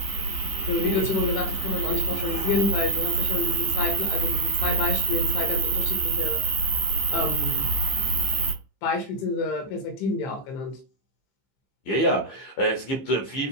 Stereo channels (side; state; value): right; late; 15 ms